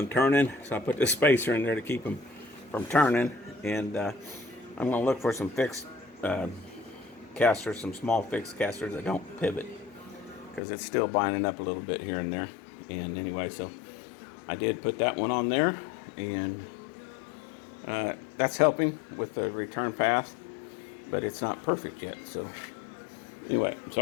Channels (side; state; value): right; drops out; at 10.6 s